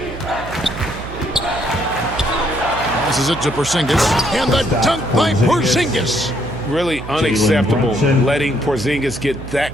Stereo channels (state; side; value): noise; right; hum, 11 dB below the sound